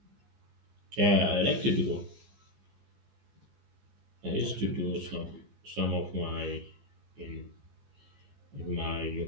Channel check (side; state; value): left; late; 15 ms